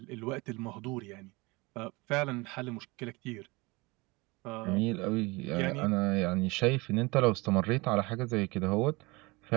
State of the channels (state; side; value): quieter; left; 24.7 dB